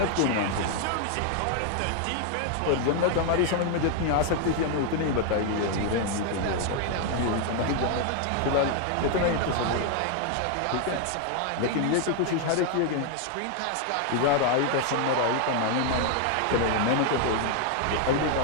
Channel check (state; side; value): different; both; correlation 0.00